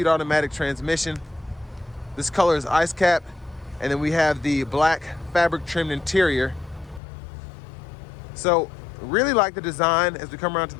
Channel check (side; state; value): right; drops out; at 7.0 s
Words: automatic transmission. This color is ice cap, and then we have the black fabric trimmed interior. So really like the design as we come around to